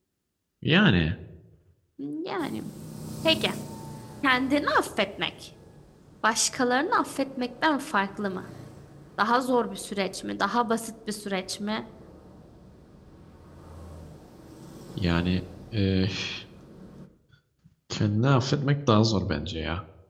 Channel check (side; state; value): both; identical; correlation 1.00